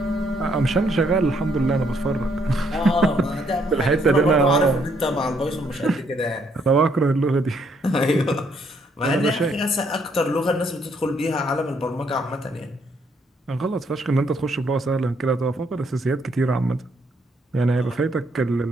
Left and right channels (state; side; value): normal; both; correlation 0.70